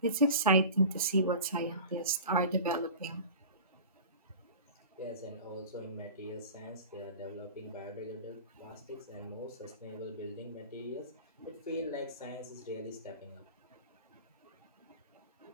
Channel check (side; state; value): both; inverted; correlation -0.37